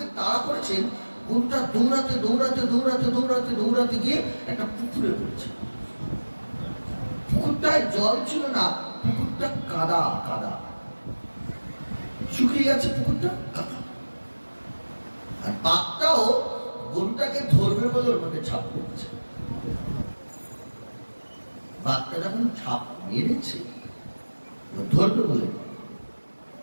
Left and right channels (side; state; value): both; inverted; correlation -1.00